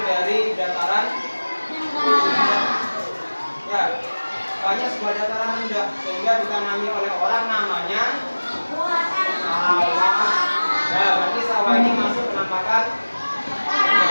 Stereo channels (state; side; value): inverted; both; correlation -1.00